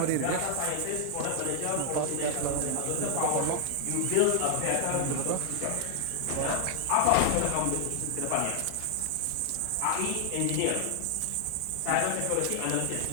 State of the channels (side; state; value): both; different; correlation 0.00